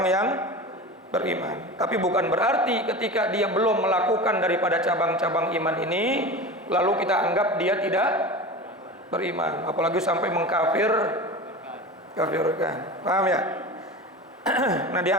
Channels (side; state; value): both; normal; correlation 0.30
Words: yang beriman. Tapi bukan berarti ketika dia belum melakukan daripada cabang-cabang iman ini lalu kita anggap dia tidak beriman, apalagi sampai mengkafirkan. Paham ya? Nah